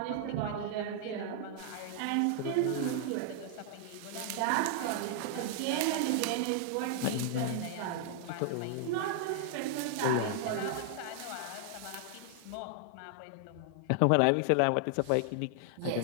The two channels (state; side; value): different; both; correlation 0.00